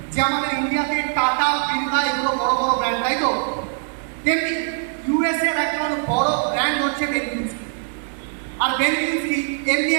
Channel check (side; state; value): left; silent; digital silence